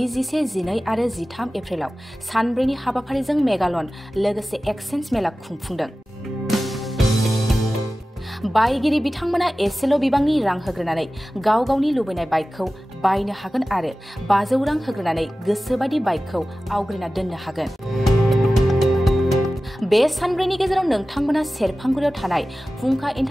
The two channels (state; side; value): normal; both; correlation 0.96